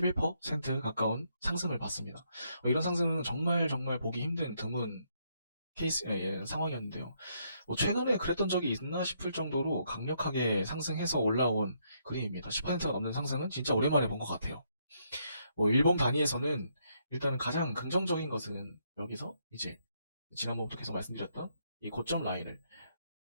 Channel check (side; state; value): both; inverted; correlation -0.74